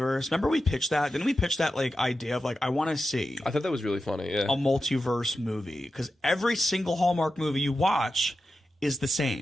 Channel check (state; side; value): normal; both; correlation 0.91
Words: Remember we pitched that? Didn't we pitch that like idea of like I want to see? I thought that was really funny. Yeah, a multiverse movie because every single Hallmark movie you watch is the